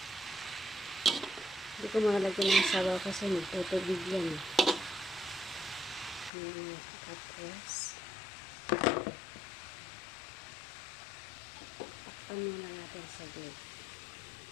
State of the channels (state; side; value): drops out; right; at 6.3 s